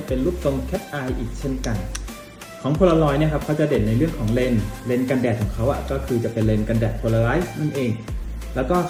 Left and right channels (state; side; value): identical; both; correlation 1.00